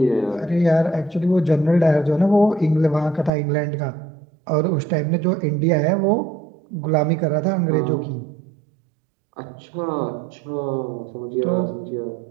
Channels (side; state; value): left; drops out; at 3.3 s